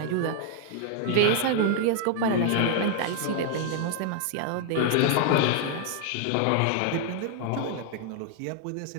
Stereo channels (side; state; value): both; different; correlation 0.00